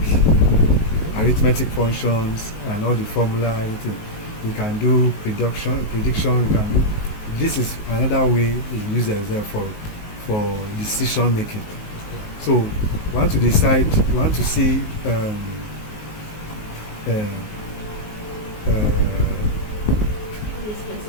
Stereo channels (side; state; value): right; late; 19 ms